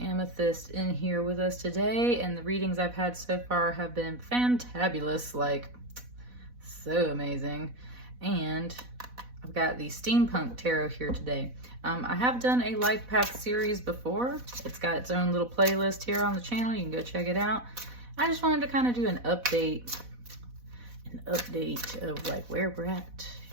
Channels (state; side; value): late; left; 4.1 ms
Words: in here with us today, and the readings I've had so far have been fantabulous, like so amazing. And I've got the Steampunk Tarot here today. I have done a life path series before. It's got its own little playlist here on the channel. You can go check it out. I just wanted to kind of do an update of like where we're at